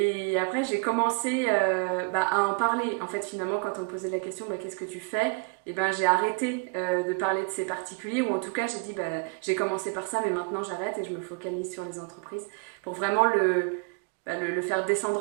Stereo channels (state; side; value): quieter; left; 31.3 dB